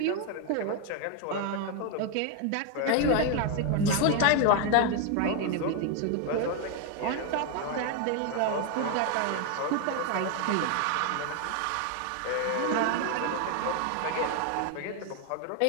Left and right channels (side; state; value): both; different; correlation 0.01